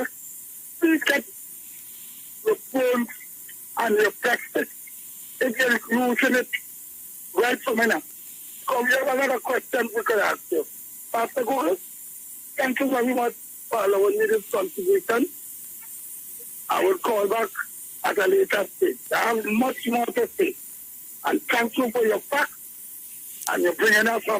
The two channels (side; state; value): both; identical; correlation 1.00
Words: please get your phones and your practice if you're using it right from now. So we have another question we could ask you. Pastor Google, thank you very much for allowing me this contribution. I will call back at a later stage. I have much more to say. And thank you for your facts and you're bringing us